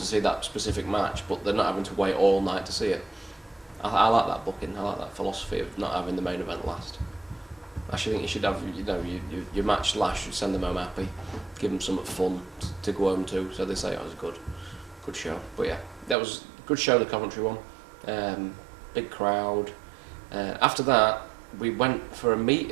see that specific match, but they're not having to wait all night to see it. I like that booking. I like that philosophy of not having the main event last. I actually think you should have, your match last. Should send them home happy, give them something fun to go home to, so they say it was a good show. But yeah, that was a good show, the Coventry one. Big crowd. After that, we went for a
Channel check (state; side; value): drops out; left; at 16.2 s